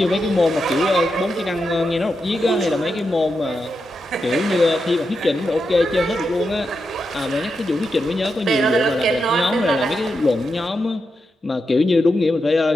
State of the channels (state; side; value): normal; both; correlation 0.86